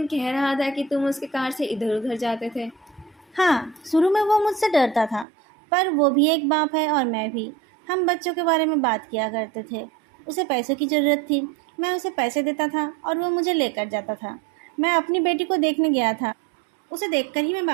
कह रहा था कि तुम उसके कार से इधर उधर जाते थे। हाँ, शुरू में वो मुझसे डरता था, पर वो भी एक बाप है और मैं भी। हम बच्चों के बारे में बात किया करते थे। उसे पैसों की ज़रूरत थी, मैं उसे पैसे देता था और वो मुझे लेकर जाता था। मैं अपनी बेटी को देखने गया था, उसे देखकर ही मैं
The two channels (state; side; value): drops out; left; at 5.2 s